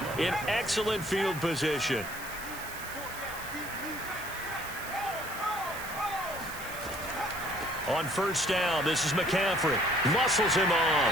in excellent field position. On 1st down, this is McCaffrey. Muscles him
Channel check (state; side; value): noise; right; hiss, 12 dB below the sound